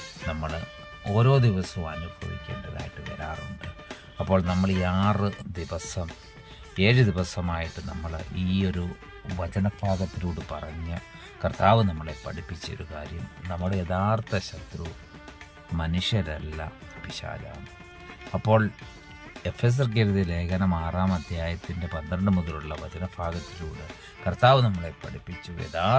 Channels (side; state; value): both; identical; correlation 1.00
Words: നമ്മൾ ഓരോ ദിവസവും അനുഭവിക്കേണ്ടതായിട്ട് വരാറുണ്ട്. അപ്പോൾ നമ്മൾ ഈ 7 ദിവസമായിട്ട് നമ്മൾ ഈ ഒരു വചനഭാഗത്തിലൂടെ പറഞ്ഞ കർത്താവ് നമ്മളെ പഠിപ്പിച്ചൊരു കാര്യം, നമ്മുടെ യഥാർത്ഥ ശത്രു മനുഷ്യരല്ല, പിശാചാണ്. അപ്പോൾ എഫെസർക്ക് എഴുതിയ ലേഖനം 6-ാം അധ്യായത്തിൻ്റെ 12 മുതലുള്ള വചനഭാഗത്തിലൂടെ കർത്താവ് നമ്മളെ പഠിപ്പിച്ചു,